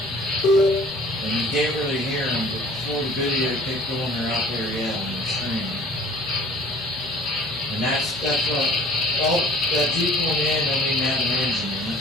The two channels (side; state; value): both; normal; correlation 0.51